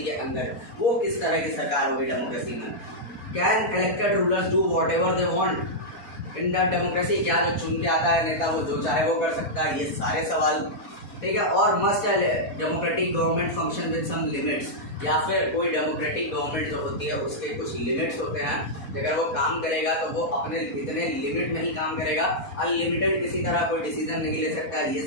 के अंदर, वो किस तरह की सरकार होगी डेमोक्रेसी में। Can elected rulers do what ever they want in the democracy. क्या जो चुन के आता है नेता वो जो चाहे वो कर सकता है, ये सारे सवाल, ठीक है। और must democratic government function with some limits. या फिर कोई डेमोक्रेटिक गवर्नमेंट जो होती है उसके कुछ लिमिट्स होते हैं, अगर वो काम करेगा तो वो अपने इतने लिमिट में ही काम करेगा, अनलिमिटेड किसी तरह कोई डिसीजन नहीं ले सकता है, ये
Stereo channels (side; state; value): right; late; 4.1 ms